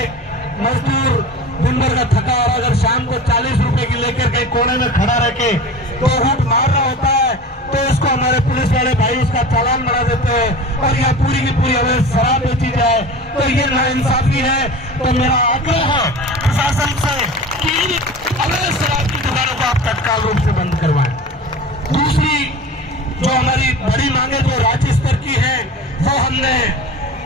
मजदूर दिन भर का थका और अगर शाम को 40 रुपए की लेकर कहीं कोने में खड़ा रह के तो हुट मार रहा होता है, तो उसको हमारे पुलिस वाले भाई उसका चालान बना देते हैं और यह पूरी की पूरी अवैध शराब बेची जाए, तो ये नाइंसाफी है। तो मेरा आग्रह है प्रशासन से कि अवैध शराब की दुकानों को आप तत्काल रूप से बंद करवाएं। दूसरी जो हमारी बड़ी मांगे जो राज्य स्तर की है, वो हमने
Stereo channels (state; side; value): normal; both; correlation 0.35